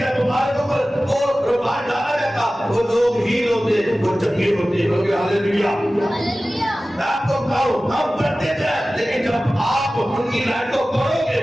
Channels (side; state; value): both; normal; correlation 0.96